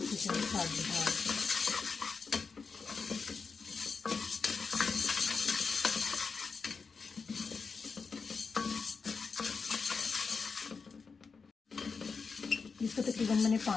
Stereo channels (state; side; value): quieter; right; 5.0 dB